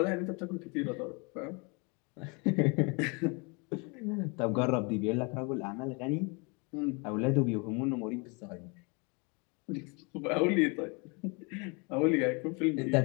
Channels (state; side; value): quieter; right; 31.5 dB